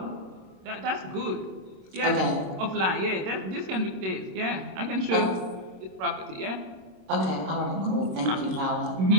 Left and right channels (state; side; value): late; left; 26 ms